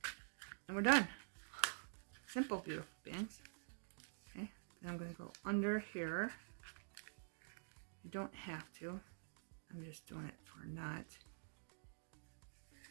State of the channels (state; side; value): silent; left; digital silence